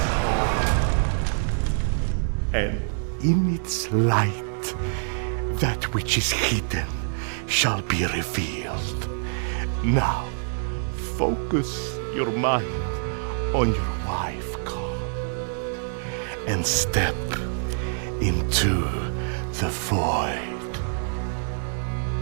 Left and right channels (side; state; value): left; silent; digital silence